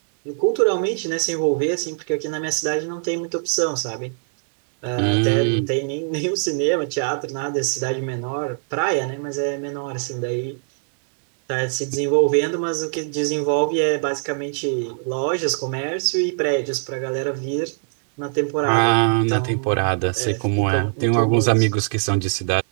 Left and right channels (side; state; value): left; silent; digital silence